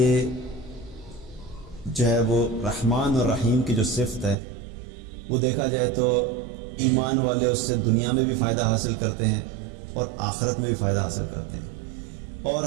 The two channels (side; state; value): left; drops out; at 4.4 s